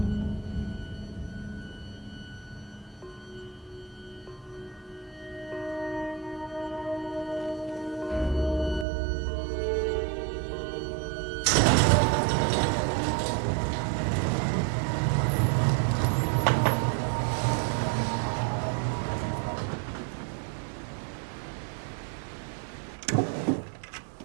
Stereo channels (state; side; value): drops out; left; at 8.8 s